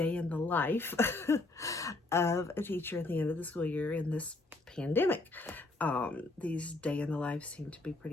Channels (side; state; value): right; quieter; 3.1 dB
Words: the life of a teacher at the end of the school year in this pandemic. These day in the life seem to be